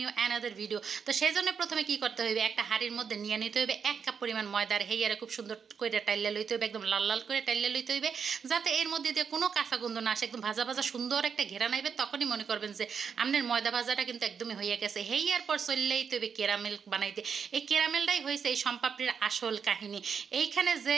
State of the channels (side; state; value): left; quieter; 6.5 dB